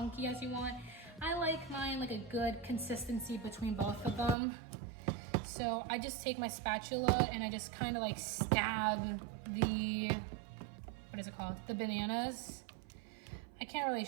as you want. I like mine like a good consistency between both of them. So I just take my spatula and I just kind of like stab the, what is it called? The bananas. I can't really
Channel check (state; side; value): drops out; left; at 4.4 s